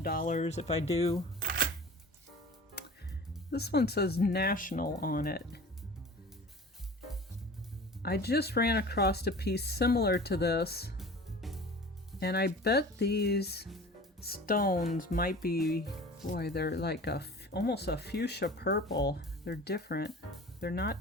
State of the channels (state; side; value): normal; both; correlation 0.40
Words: if I do. This one says National on it. I just ran across a piece similar to this, and I bet these stones might be, boy, they're like almost a fuchsia purple. They're different. They're not